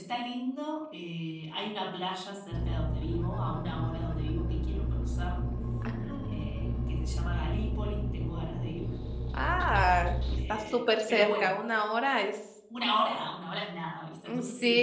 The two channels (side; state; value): both; identical; correlation 1.00